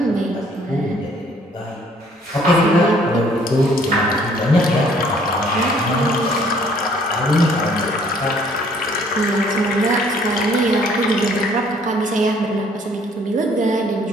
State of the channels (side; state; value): both; normal; correlation 0.60